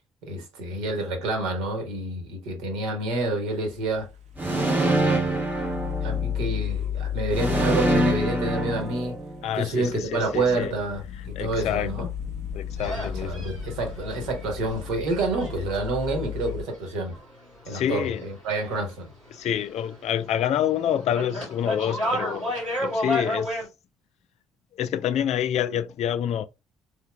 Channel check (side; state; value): both; normal; correlation 0.53